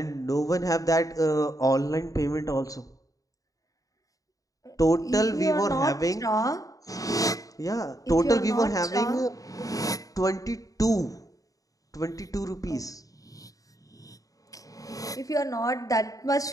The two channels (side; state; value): right; late; 0.17 ms